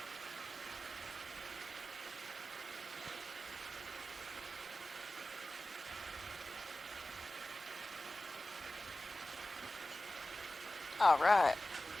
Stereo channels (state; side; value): normal; both; correlation 0.95